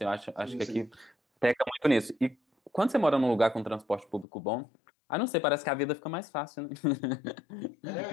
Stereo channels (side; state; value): right; drops out; at 4.2 s